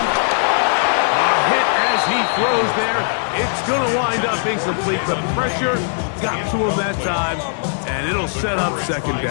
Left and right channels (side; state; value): right; silent; 58 dB below the other